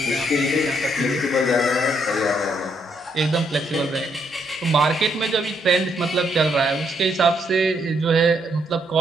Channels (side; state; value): both; normal; correlation 0.74